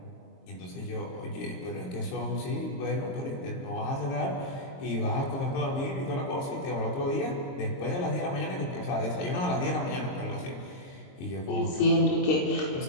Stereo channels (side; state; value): right; late; 22 ms